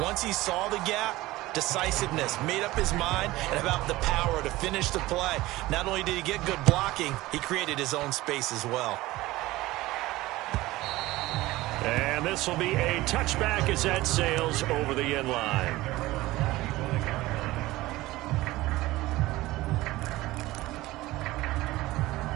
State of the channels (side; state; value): left; quieter; 18.3 dB